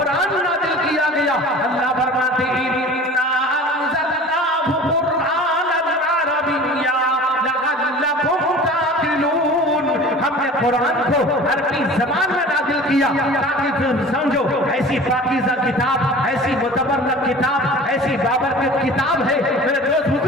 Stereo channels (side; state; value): both; normal; correlation 0.41